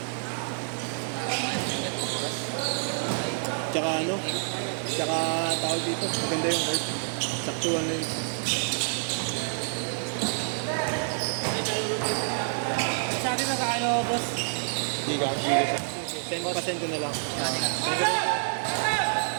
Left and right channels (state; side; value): silent; left; 59 dB below the other